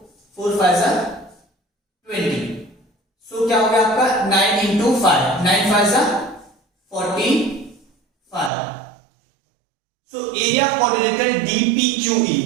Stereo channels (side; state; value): left; drops out; at 8.5 s